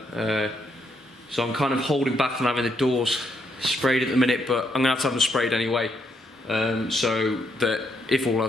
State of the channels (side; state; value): both; normal; correlation 0.76